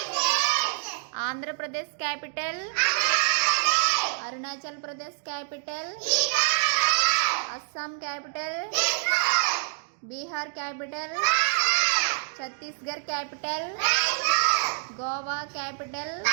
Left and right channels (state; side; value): silent; left; digital silence